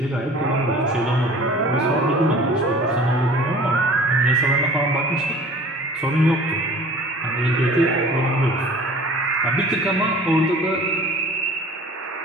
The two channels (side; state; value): both; normal; correlation 0.45